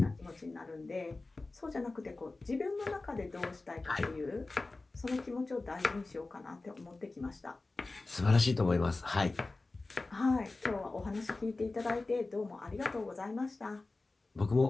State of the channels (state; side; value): quieter; right; 3.3 dB